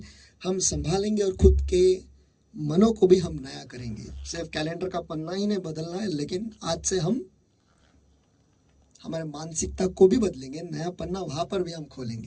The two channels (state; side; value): identical; both; correlation 1.00